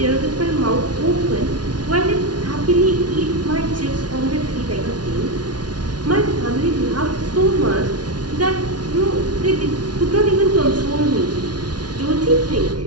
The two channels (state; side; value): late; left; 0.69 ms